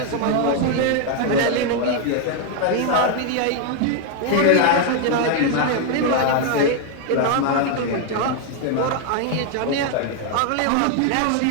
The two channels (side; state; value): both; different; correlation 0.01